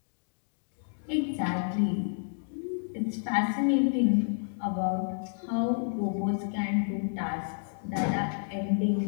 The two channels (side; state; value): right; silent; digital silence